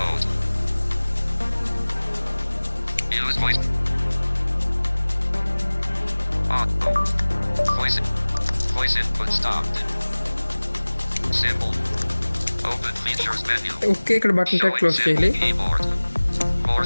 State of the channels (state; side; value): inverted; both; correlation -1.00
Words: Use voice. Auto. Voice input stopped. Symbol. Open features menu. Okay, ఇక్కడ button tag close చేయాలి. Keyboard. More